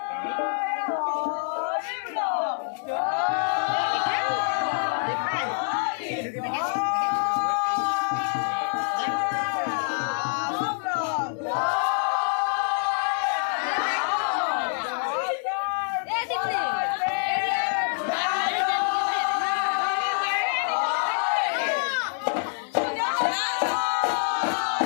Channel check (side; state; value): right; silent; 61 dB below the other